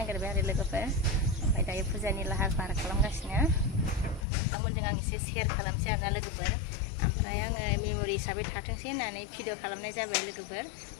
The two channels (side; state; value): right; drops out; at 4.2 s